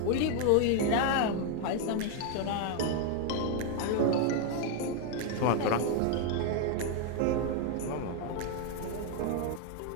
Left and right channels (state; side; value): different; both; correlation 0.01